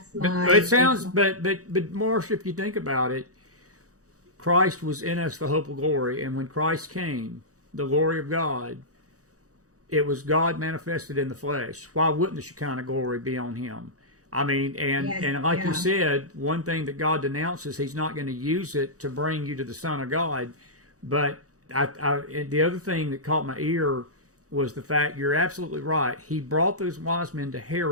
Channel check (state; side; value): late; left; 0.66 ms